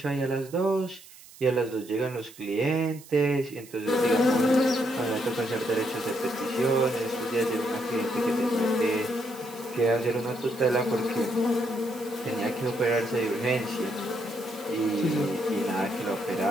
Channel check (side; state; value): right; noise; hiss, 20 dB below the sound